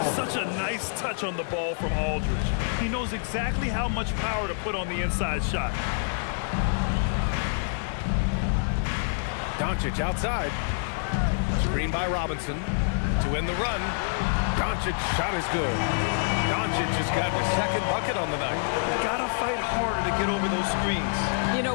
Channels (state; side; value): silent; right; digital silence